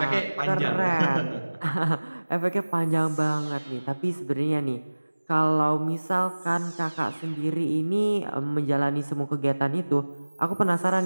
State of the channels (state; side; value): inverted; both; correlation -1.00